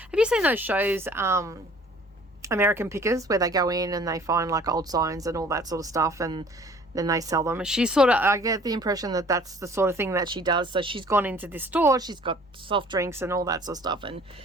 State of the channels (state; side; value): normal; both; correlation 0.52